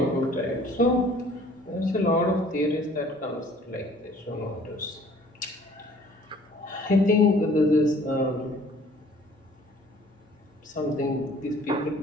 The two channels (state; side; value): normal; both; correlation 0.54